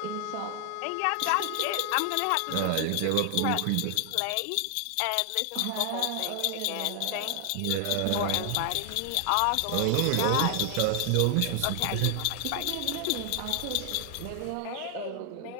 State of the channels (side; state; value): both; different; correlation 0.00